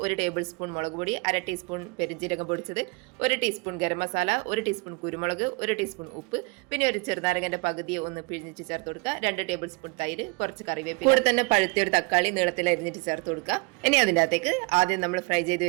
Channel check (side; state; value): left; quieter; 30.0 dB